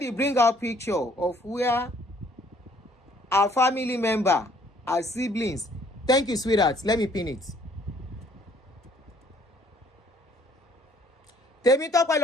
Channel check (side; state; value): both; normal; correlation 0.61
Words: bring out picture of where our family member, our siblings. Thank you, sweetheart. Let me pin it. Tèmi Tọ́pẹ́